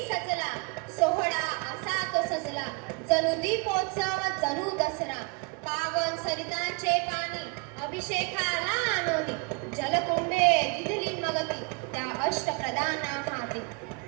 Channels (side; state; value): left; quieter; 32.6 dB